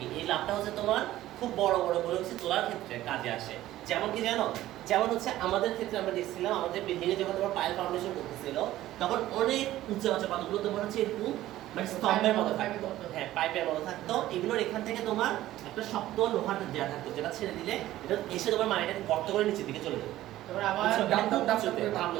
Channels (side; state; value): left; quieter; 14.7 dB